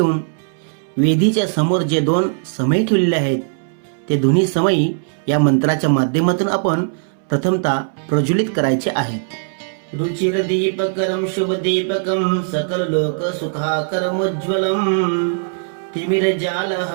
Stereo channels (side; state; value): left; silent; 67 dB below the other